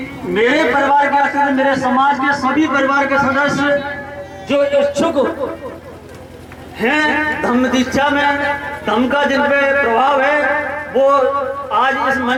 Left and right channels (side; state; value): both; identical; correlation 1.00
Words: मेरे परिवार के सदस्य, मेरे समाज के सभी परिवार के सदस्य जो इच्छुक हैं धम्म दीक्षा में, धम्म का जिन पे प्रभाव है, वो आज इस